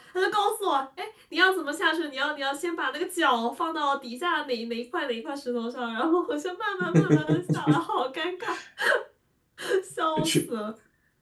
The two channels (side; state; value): both; identical; correlation 1.00